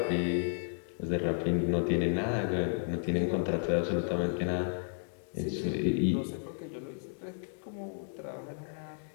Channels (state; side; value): silent; right; digital silence